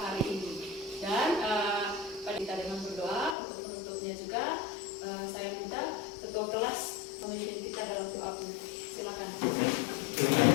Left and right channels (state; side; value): drops out; right; at 3.4 s